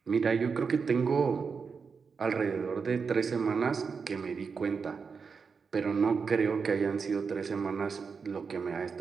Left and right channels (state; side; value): quieter; left; 5.5 dB